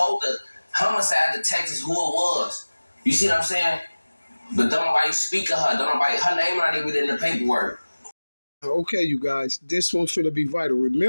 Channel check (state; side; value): inverted; both; correlation -1.00